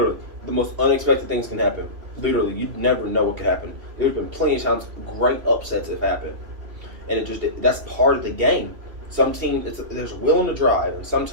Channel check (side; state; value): left; late; 3.0 ms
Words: the most unexpected things can happen. Literally, you never know what could happen. There's been plenty of times great upsets have happened. And that's part of the game. Some teams, there's will and a drive, and